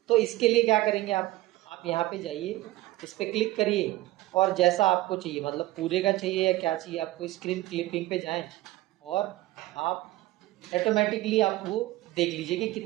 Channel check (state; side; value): quieter; left; 17.6 dB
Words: तो इसके लिए क्या करेंगे आप आप यहाँ पे जाइए, इस पर क्लिक करिए और जैसा आपको चाहिए, मतलब पूरे का चाहिए या क्या चाहिए आपको, स्क्रीन क्लिपिंग पे जाएं और आप ऑटोमेटिकली आप वो देख लीजिए कि